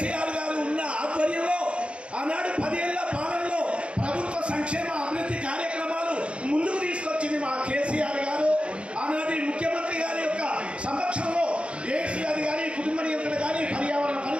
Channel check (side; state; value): left; late; 0.059 ms